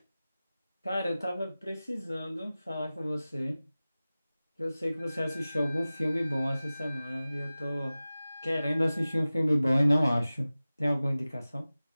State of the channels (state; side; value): inverted; both; correlation -0.97